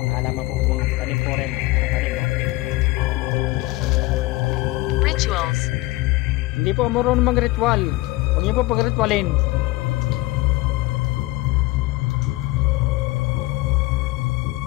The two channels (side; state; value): right; quieter; 19.9 dB